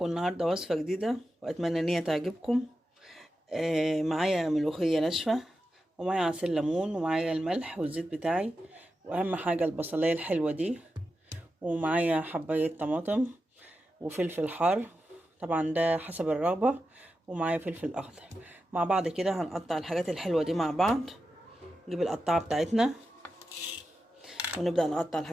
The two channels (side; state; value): both; normal; correlation 0.90